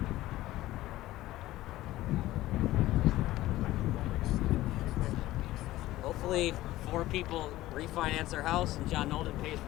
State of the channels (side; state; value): right; quieter; 16.2 dB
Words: Hopefully 4 people refinance their house and John Nolden pays